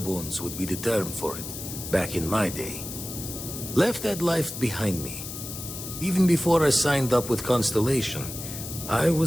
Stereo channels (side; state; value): left; noise; hiss, 9 dB below the sound